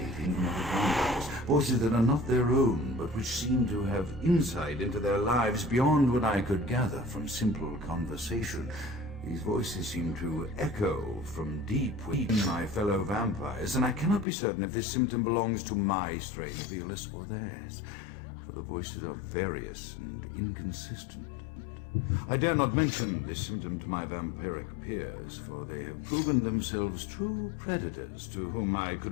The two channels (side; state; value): right; drops out; at 14.2 s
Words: from other vampires, voices that are not their own, but which seem to have insight into their lives beyond what I could gather from simple conversation. These voices seem to echo from deep within my fellow vampires, and I cannot be certain if this symptom belongs to my strain of illness or theirs, for the voices are various and inconsistent. I dare not mention this symptom to my vampiric peers, for they have proven themselves true predators to whom I could